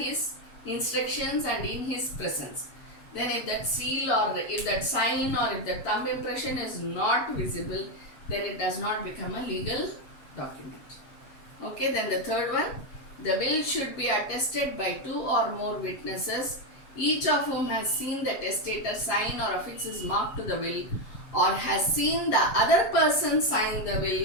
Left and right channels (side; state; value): right; late; 7.5 ms